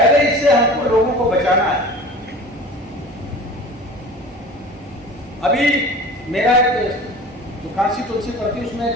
इससे हमको लोगों को बचाना है। अभी मेरा एक जो काशी तुलसी पड़ती है, उसमें एक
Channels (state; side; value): normal; both; correlation 0.39